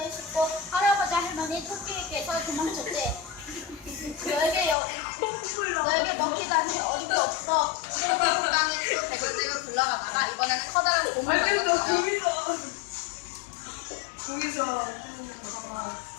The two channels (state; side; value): drops out; right; at 4.8 s